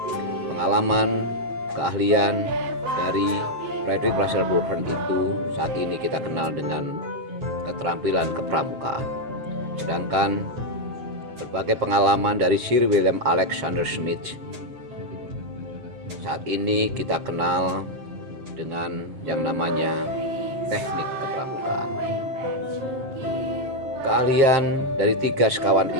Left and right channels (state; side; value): late; left; 7.6 ms